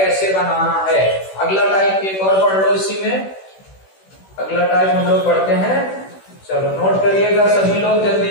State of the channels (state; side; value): late; right; 16 ms